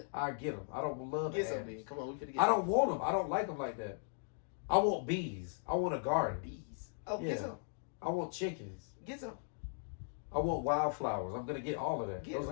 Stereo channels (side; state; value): right; silent; digital silence